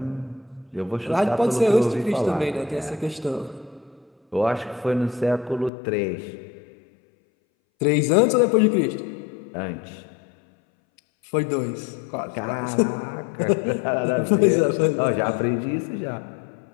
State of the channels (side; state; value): right; drops out; at 5.7 s